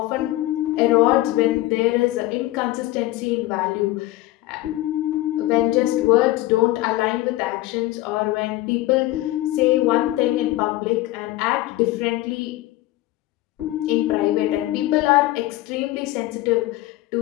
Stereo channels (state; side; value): quieter; right; 17.0 dB